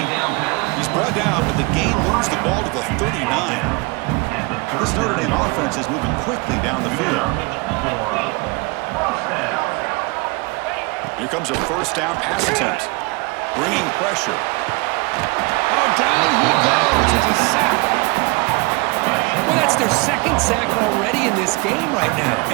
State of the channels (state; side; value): quieter; left; 26.8 dB